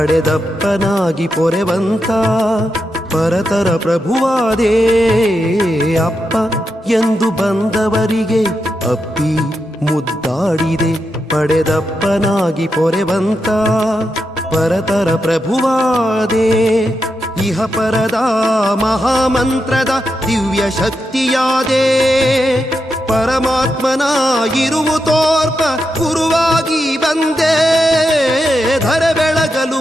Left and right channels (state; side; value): normal; both; correlation 0.86